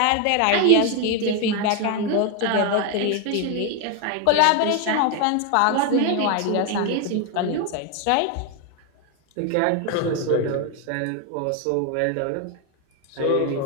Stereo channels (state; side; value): different; both; correlation 0.01